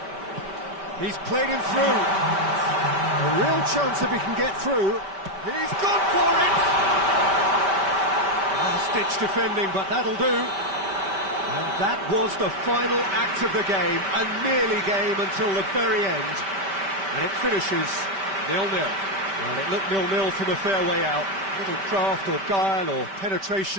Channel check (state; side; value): late; left; 5.1 ms